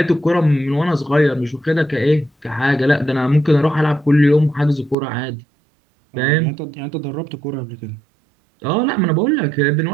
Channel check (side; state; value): left; drops out; at 5.0 s